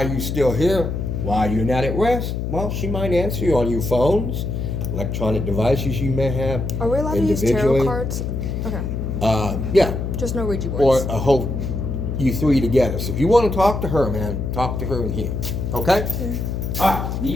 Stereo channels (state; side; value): noise; left; hum, 3 dB below the sound